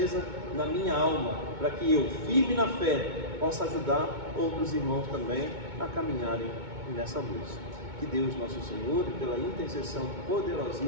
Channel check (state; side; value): late; left; 2.2 ms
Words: na minha alma, para que eu, firme na fé, possa ajudar outros irmãos também a caminharem nessa luz. Que Deus nosso Senhor, pela intercessão